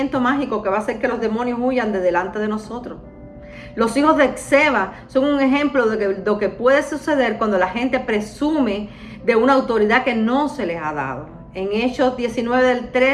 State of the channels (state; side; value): identical; both; correlation 1.00